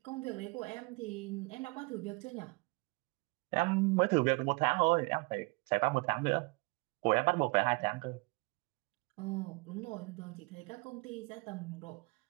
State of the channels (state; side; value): quieter; left; 28.5 dB